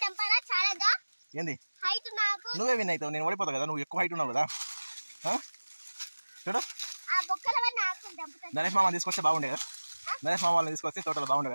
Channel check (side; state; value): both; inverted; correlation -1.00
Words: తెంపాలా చాలదా ఏంది హైట్ నాకు నువ్వే విన్ అవుతావు, నేను ఓడిపోతావు కదా, నువ్వు ఎక్కువ హైట్ ఉన్నావు కదా. చూడు ఆ బొక్కల వల్ల ఆకులు తెంపుతాను. నరేష్ మామ తీసుకొస్తే బాగుండే కదా, నరేష్ మామ వాళ్ళని తీసుకొస్తే తోటలో బాగుండే